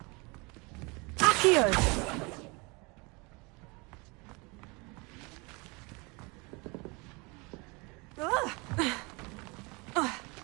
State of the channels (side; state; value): left; quieter; 27.9 dB